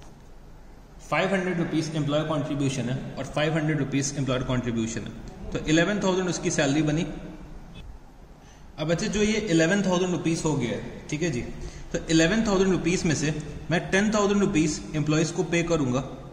500 रुपीज एम्प्लॉयर कॉन्ट्रीब्यूशन है और 500 रुपीज एम्प्लॉयर कॉन्ट्रीब्यूशन है, तो 11,000 उसकी सैलरी बनी। अब बच्चे जो ये 11,000 रुपीज हो गया है, ठीक है जी, तो 11,000 रुपीज में से मैं 10,000 रुपीज एम्प्लॉयज को पे करूंगा,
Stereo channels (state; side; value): identical; both; correlation 1.00